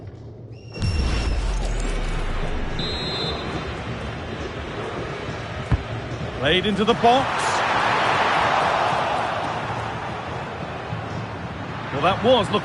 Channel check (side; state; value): both; identical; correlation 1.00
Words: Played into the box. Well, that was